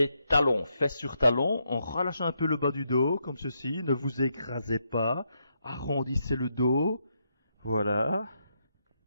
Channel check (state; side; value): inverted; both; correlation -0.80